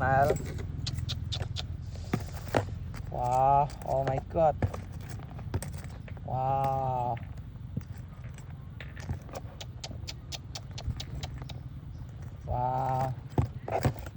Wow, oh my god. Wow. Wow.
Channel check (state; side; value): identical; both; correlation 1.00